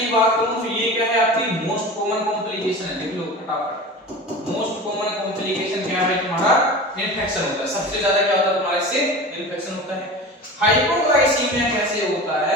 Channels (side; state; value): both; normal; correlation 0.34